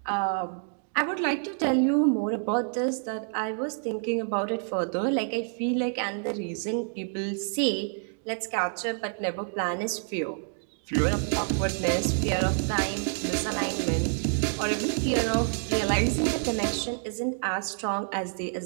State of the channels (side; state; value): left; silent; 57 dB below the other